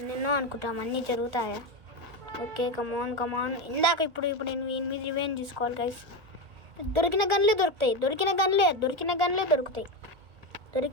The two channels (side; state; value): left; late; 1.6 ms